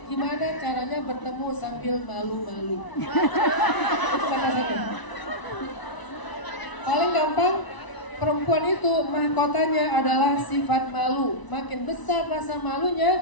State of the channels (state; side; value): late; right; 1.0 ms